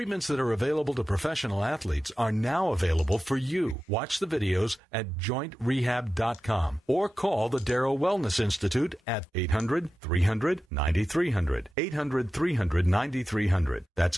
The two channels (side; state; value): both; normal; correlation 0.93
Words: that are available to professional athletes are now available for you. Watch the videos at JointRehab.com or call the Darrow Wellness Institute at 800-300-9300. 800-300-9300. That's